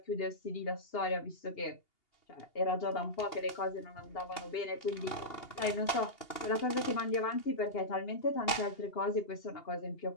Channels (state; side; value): late; right; 2.8 ms